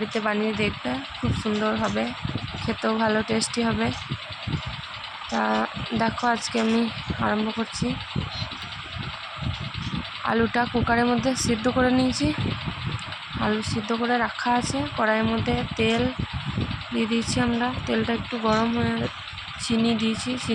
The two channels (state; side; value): identical; both; correlation 1.00